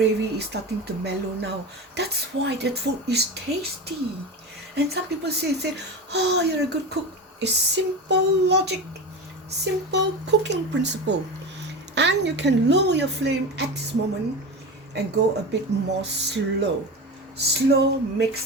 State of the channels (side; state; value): both; normal; correlation 0.25